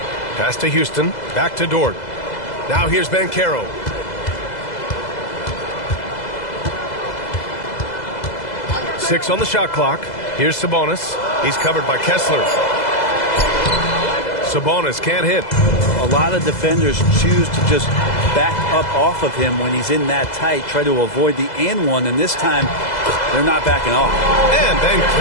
Pass to Houston. Back to Dort. Now here's Banchero. Six on the shot clock. Here's Sabonis. He's covered by Kessler. Sabonis can't hit. A lot of defenders choose to just back up off of him when he's in that tight, try to avoid the and one, and this time they're not backing off. And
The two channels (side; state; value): right; late; 2.0 ms